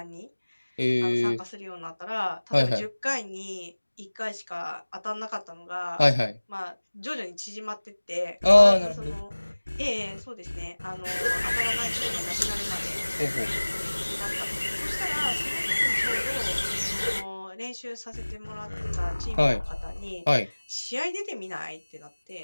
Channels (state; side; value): inverted; both; correlation -1.00